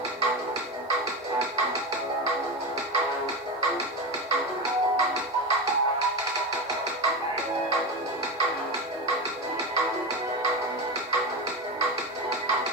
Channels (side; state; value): both; normal; correlation 0.19